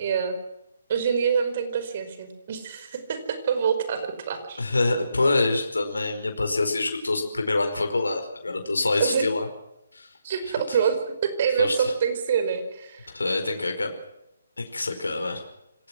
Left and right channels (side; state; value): both; inverted; correlation -0.78